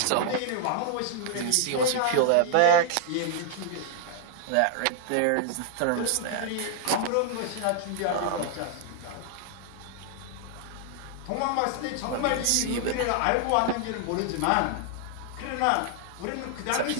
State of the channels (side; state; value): both; different; correlation -0.01